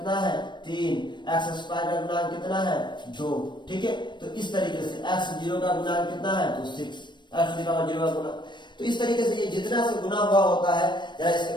है, 3, x² का गुणांक कितना है, 2। ठीक है, तो इस तरीके से x0 का गुणांक कितना है, तो 6, x3 का 0 का गुणांक। तो इस तरीके से ये जितना से गुना हुआ होता है, जरा इसको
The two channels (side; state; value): right; late; 0.22 ms